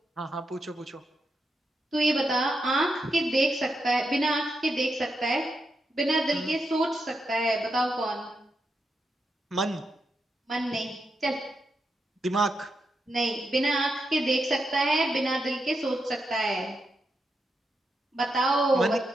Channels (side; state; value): both; normal; correlation 0.85